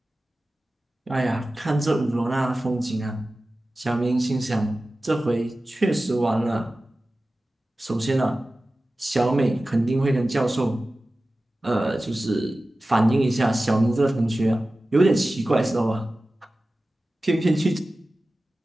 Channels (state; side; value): normal; both; correlation 0.96